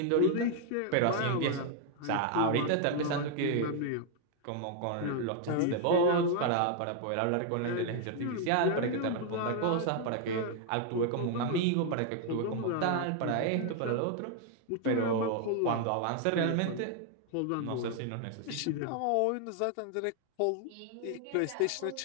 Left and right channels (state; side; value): different; both; correlation 0.00